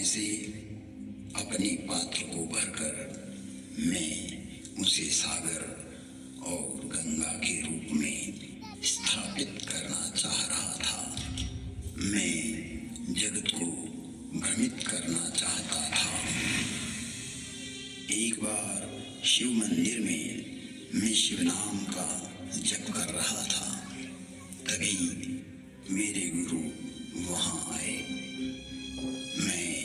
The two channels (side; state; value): both; identical; correlation 1.00